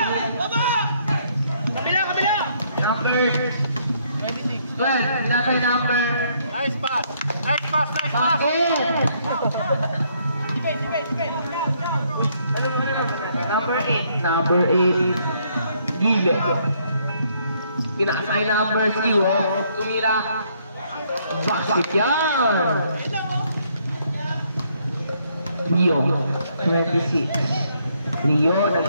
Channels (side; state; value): both; inverted; correlation -0.69